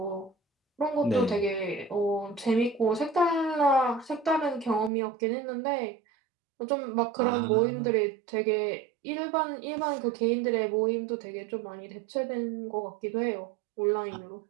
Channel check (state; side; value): drops out; left; at 4.9 s